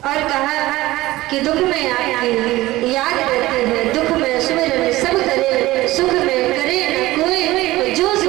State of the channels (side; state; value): left; quieter; 17.7 dB